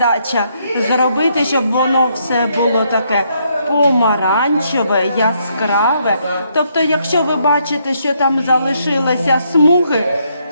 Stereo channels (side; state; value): both; inverted; correlation -0.74